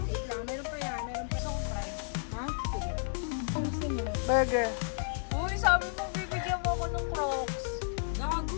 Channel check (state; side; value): silent; right; digital silence